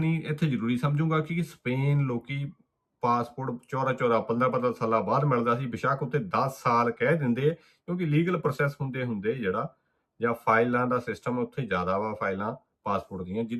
ਇੱਥੇ ਜ਼ਰੂਰੀ ਸਮਝੂੰਗਾ ਕਿ ਸਪੇਨ ਲੋਕੀ ਪਾਸਪੋਰਟ 14 15 ਸਾਲਾਂ ਬਾਅਦ ਮਿਲਦਾ ਸੀ, ਬੇਸ਼ੱਕ ਉੱਤੇ 10 ਸਾਲ ਕਹਿ ਦਿੰਦੇ, ਕਿਉਂਕਿ ਲੀਗਲ ਪ੍ਰੋਸੈਸ ਹੁੰਦੇ ਜਿਹੜਾ ਜਾਂ ਫਾਈਲਾਂ ਦਾ ਸਿਸਟਮ ਉੱਥੇ ਜ਼ਿਆਦਾ ਵਾ ਫਾਈਲਾਂ ਪਾਸਪੋਰਟ ਦੀਆਂ,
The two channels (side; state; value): both; identical; correlation 1.00